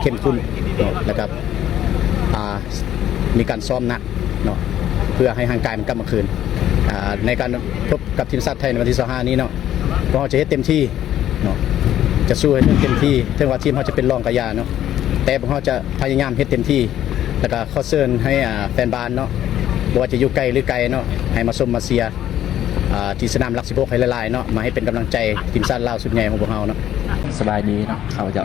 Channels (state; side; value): quieter; right; 11.8 dB